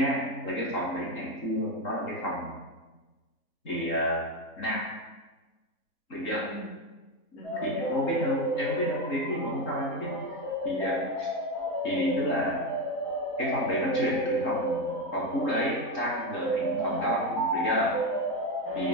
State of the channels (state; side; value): late; right; 3.7 ms